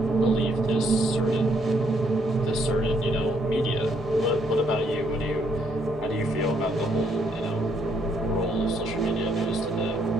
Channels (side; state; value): both; normal; correlation 0.71